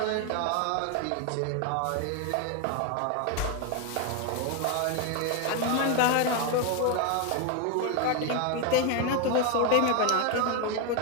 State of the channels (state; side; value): different; both; correlation 0.01